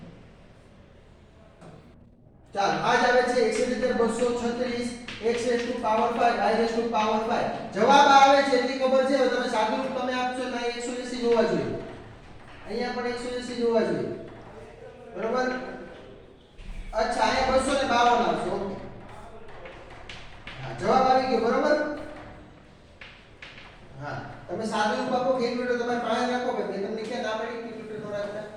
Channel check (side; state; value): both; identical; correlation 1.00